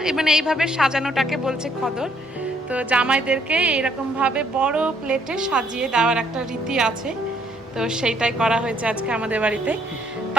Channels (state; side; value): normal; both; correlation 0.68